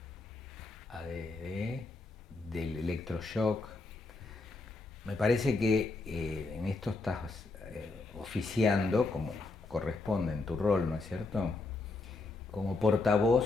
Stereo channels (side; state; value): right; quieter; 3.5 dB